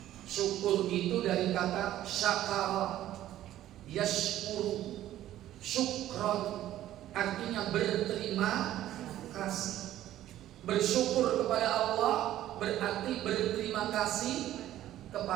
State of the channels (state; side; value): quieter; left; 13.2 dB